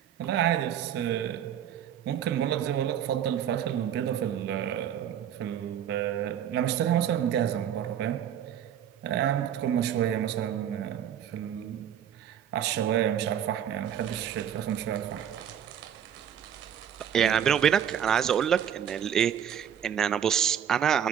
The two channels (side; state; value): left; quieter; 9.4 dB